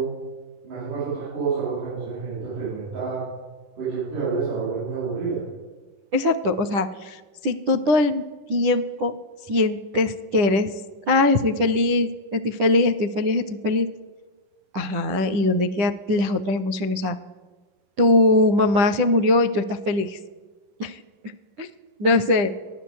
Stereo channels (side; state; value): left; late; 10 ms